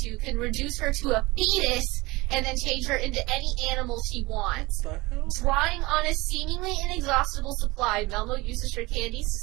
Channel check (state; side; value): quieter; left; 22.1 dB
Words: two can reduce her to a fetus and then change her into any animal she wants. What the hell? Drawing on a seemingly inexhaustible supply, Melmo uses her candies to